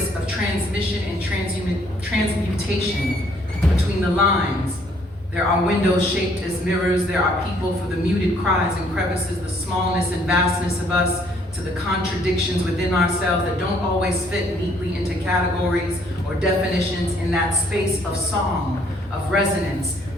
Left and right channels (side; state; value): both; normal; correlation 0.64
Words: of transmission and transmutation between the lines. There are windows shaped as mirrors. There are people for the muted cries and crevices, the smallness and vastness of us, to the contradictions within ourselves that don't always fit neatly into categories or definitions in that space of song, of resonance,